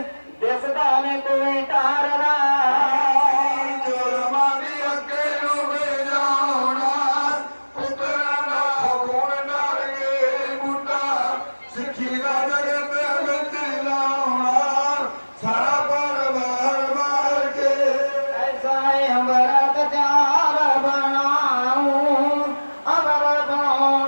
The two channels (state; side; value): inverted; both; correlation -1.00